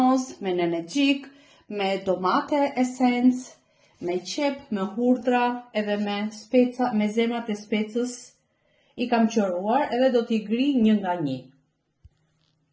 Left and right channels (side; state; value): both; identical; correlation 1.00